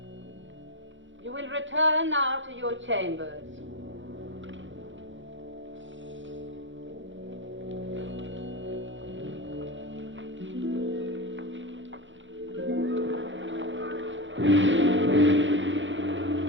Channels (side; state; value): left; late; 0.55 ms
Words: You will return now to your chambers.